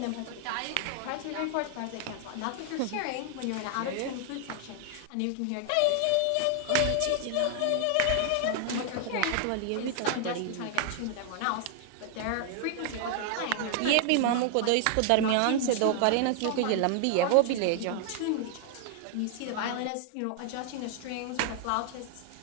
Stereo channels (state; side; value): different; both; correlation 0.00